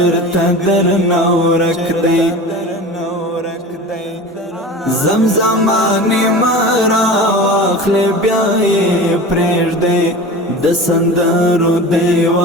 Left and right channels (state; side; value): normal; both; correlation 0.34